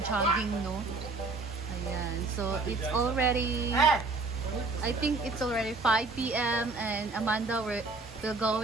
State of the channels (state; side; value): quieter; left; 3.6 dB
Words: jogging, no? Ayan. So, it's already... I think it's already 5 p.m. and Amanda, we're